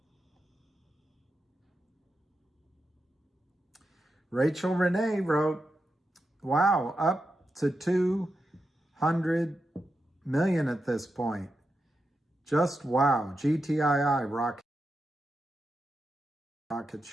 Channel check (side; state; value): both; normal; correlation 0.88